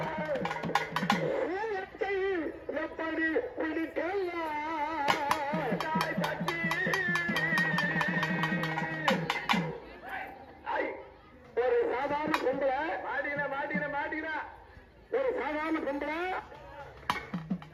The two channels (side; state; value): both; identical; correlation 1.00